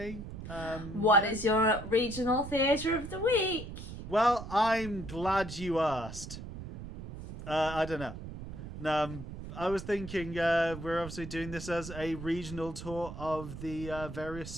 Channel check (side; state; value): right; noise; rumble, 10 dB below the sound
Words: What is your regional theatre of the week? Well, I'm glad you asked. I don't know. I was thinking we're obviously doing this as a regional tour of the various